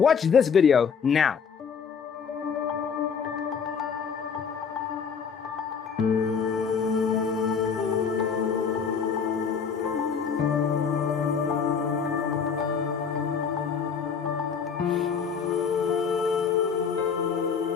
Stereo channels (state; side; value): quieter; right; 6.4 dB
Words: this video now.